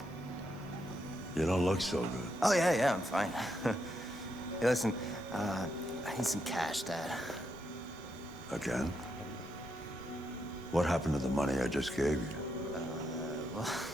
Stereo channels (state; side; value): normal; both; correlation 0.81